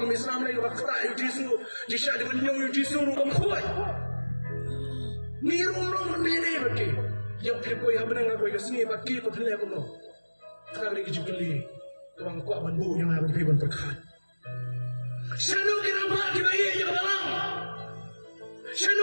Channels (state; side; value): inverted; both; correlation -1.00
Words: Islam lai wakta yu Jisu jisha de benyo yu Jisu rum khoi ni rum rum me ne baki yang pipo ya benang aku ke sini baki ko thile ko no kali ke jibli tuang ko bandu yang ada di ban perkat shanu kira ba ke bayi ya balang